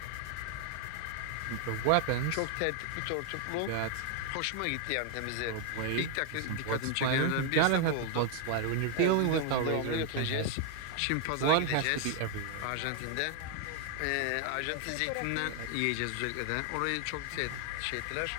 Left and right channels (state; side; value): different; both; correlation 0.00